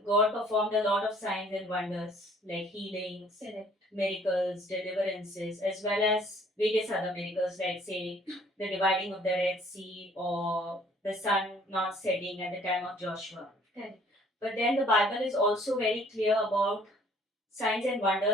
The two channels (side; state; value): both; normal; correlation 0.58